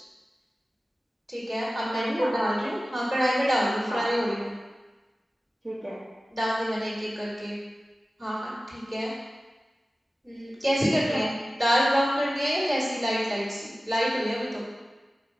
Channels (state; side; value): normal; both; correlation 0.96